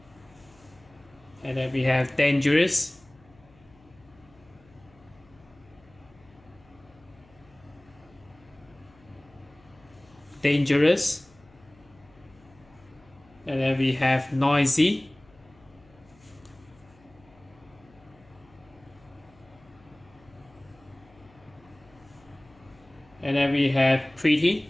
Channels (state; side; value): noise; left; hum, 28 dB below the sound